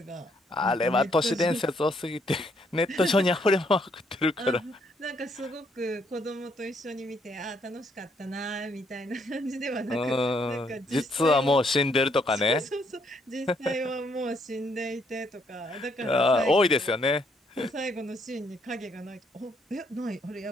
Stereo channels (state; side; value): normal; both; correlation 0.71